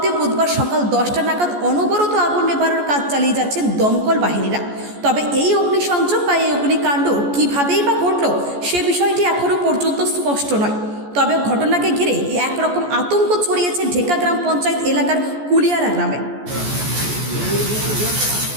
বুধবার সকাল 10টা নাগাদ অনবরত আগুন নেভানোর কাজ চালিয়ে যাচ্ছেন দমকল বাহিনীরা। তবে এই অগ্নিসংযোগ বা এই অগ্নিকাণ্ড কীভাবেই বা ঘটল সে বিষয়টি এখনও পর্যন্ত স্পষ্ট নয়। তবে ঘটনাকে ঘিরে একরকম আতঙ্ক ছড়িয়েছে ঢেকা গ্রাম পঞ্চায়েত এলাকার কুলিয়ারা গ্রামে।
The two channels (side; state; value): left; late; 14 ms